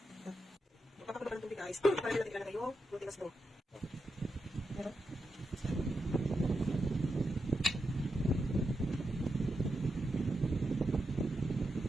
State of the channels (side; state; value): both; normal; correlation 0.86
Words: Magpapakabal ng tubig guys. Para natin ilalagay yung glutinous dough. Meron?